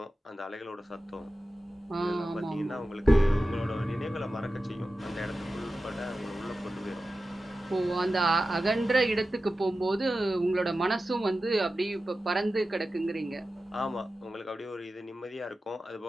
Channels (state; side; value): normal; both; correlation 0.93